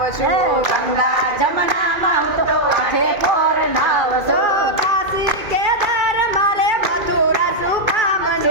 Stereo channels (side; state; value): left; late; 2.4 ms